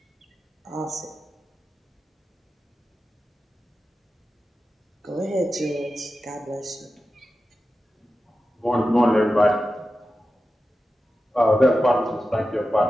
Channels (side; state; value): both; normal; correlation 0.92